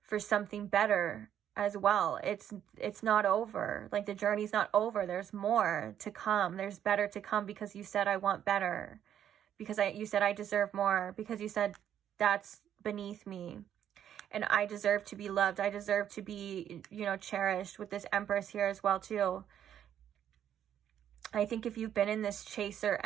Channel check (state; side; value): quieter; left; 10.0 dB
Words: for something better as well. It's not over. Like, the journey's not over. There's more to come. There's better to come, because you said, I want better. Because you said I deserve more. Because you said that's beneath me. And I deserve to be loved. I deserve to be, you know, cherished, with this Empress here as well too. I think if you've been in this chaser